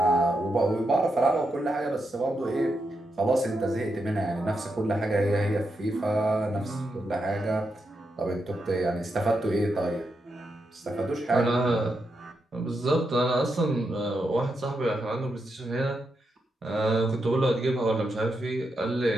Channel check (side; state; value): both; normal; correlation 0.84